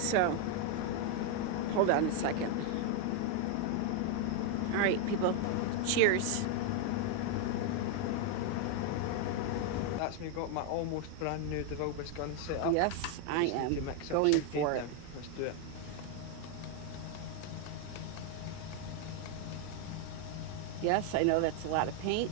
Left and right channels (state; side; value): different; both; correlation 0.01